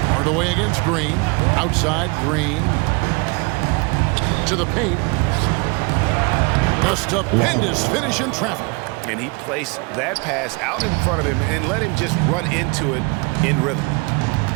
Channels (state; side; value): quieter; left; 28.8 dB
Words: Hardaway against Green. Outside Green. To the paint. A stupendous finish in traffic. And he placed that pass out in front of him and let him just run into it in rhythm.